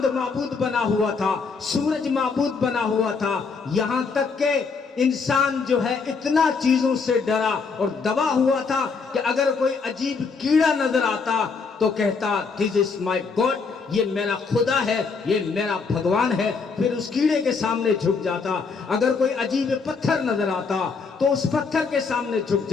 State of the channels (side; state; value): right; quieter; 4.9 dB